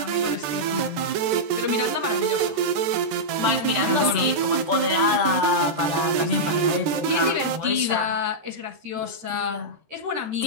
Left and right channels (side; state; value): left; late; 13 ms